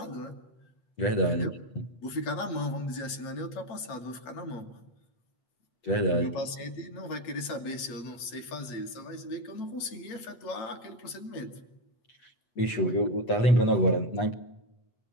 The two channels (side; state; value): right; late; 8.3 ms